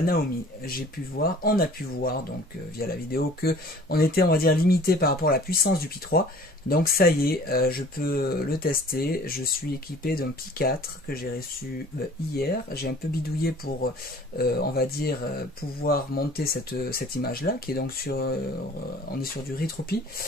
Naomi. On a pu voir donc via la vidéo que on était, on va dire, limité par rapport à la puissance du Pi 3. Donc ça y est, je peux le tester. Je suis équipé d'un Pi 4 que j'ai reçu hier. J'ai un peu bidouillé pour, on va dire, pouvoir monter cette image-là, qui est donc sur, on est sur du Retropie.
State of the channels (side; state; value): both; normal; correlation 0.49